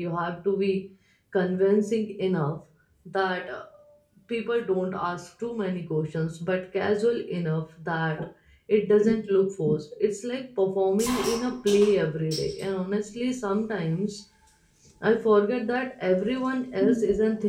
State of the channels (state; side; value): identical; both; correlation 1.00